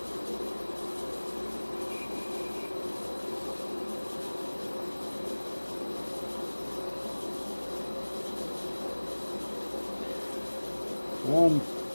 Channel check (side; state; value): both; inverted; correlation -1.00